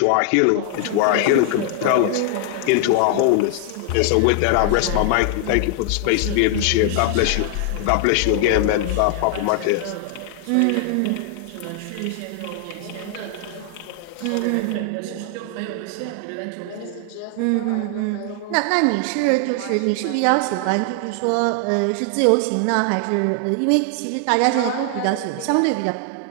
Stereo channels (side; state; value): both; different; correlation 0.00